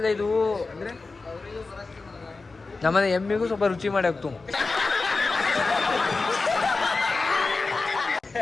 ಇದು ಅಂದರೆ ನಮ್ಮನೆ ಎಮ್ಮಿಗೂ ಸ್ವಲ್ಪ ರುಚಿ ಮಾಡಿ ಹಾಕ್ತು.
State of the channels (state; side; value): quieter; right; 3.8 dB